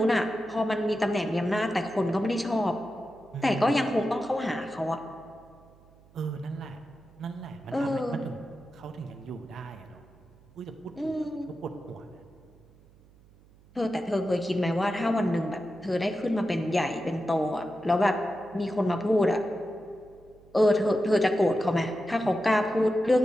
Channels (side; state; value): right; noise; hum, 27 dB below the sound